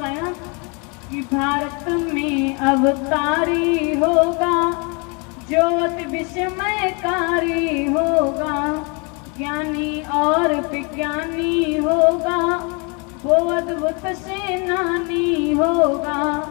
कि भारत में अवतारी होगा जो अति विस्मयकारी होगा। ज्ञानी और विज्ञानी होगा वो अद्भुत सेनानी होगा।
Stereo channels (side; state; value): right; quieter; 32.6 dB